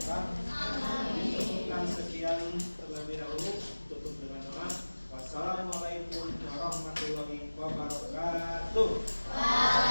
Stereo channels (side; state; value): both; inverted; correlation -1.00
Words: Alamin. Dan sekian terlebih dahulu, tutup dengan doa. Wassalamualaikum warahmatullahi wabarakatuh.